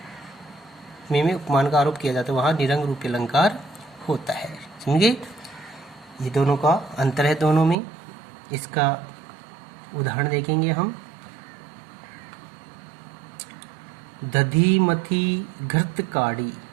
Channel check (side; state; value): left; drops out; at 7.8 s